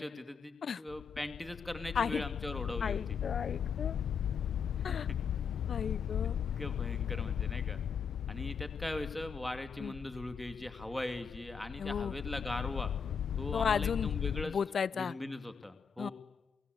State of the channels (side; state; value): right; quieter; 6.1 dB